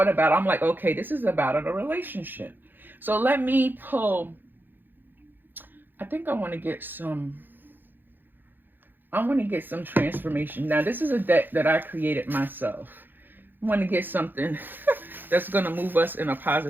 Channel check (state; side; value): late; left; 0.093 ms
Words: about it, I'm like, okay, this is about a relationship. So let me pull, I think I want to get some I want to get some transformation. Now, this is a deck that I created myself. I want to get something that's going to move us in a